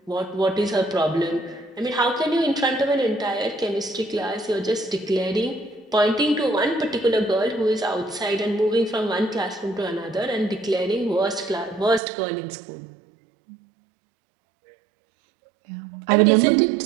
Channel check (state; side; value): drops out; left; at 12.0 s